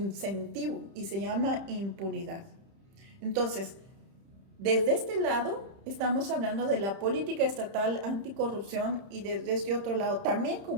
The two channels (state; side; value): late; left; 30 ms